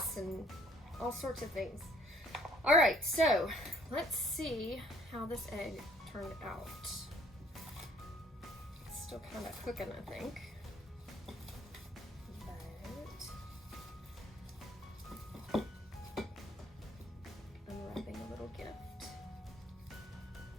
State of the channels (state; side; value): normal; both; correlation 0.59